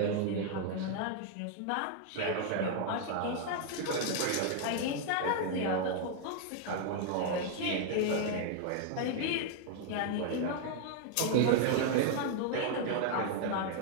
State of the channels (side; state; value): both; different; correlation 0.00